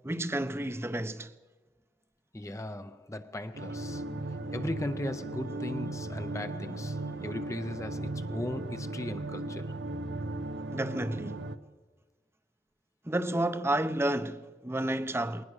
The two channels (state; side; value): normal; both; correlation 0.77